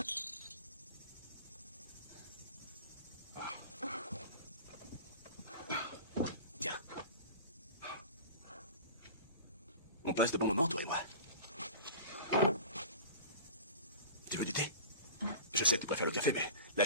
Tiens. On passe de bons moments, toi et moi. Tu veux du thé? Je sais que tu préfères le café, mais là,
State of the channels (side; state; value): both; inverted; correlation -0.37